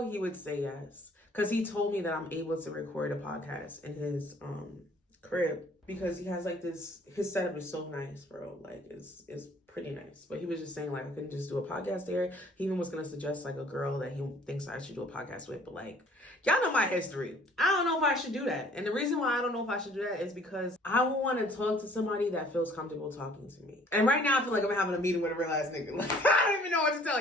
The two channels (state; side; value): normal; both; correlation 0.56